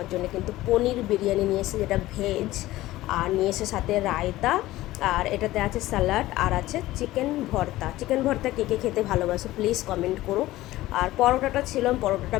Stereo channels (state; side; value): quieter; right; 16.7 dB